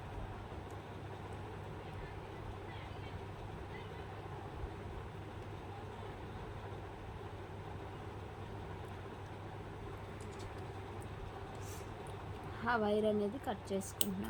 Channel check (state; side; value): identical; both; correlation 1.00